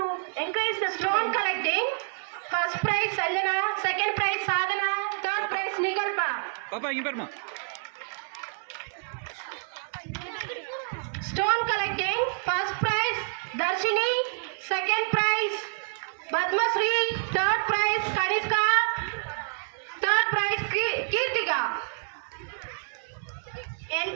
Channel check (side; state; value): left; silent; 59 dB below the other